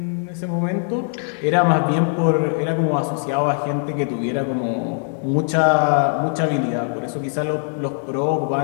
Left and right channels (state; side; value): silent; right; 56 dB below the other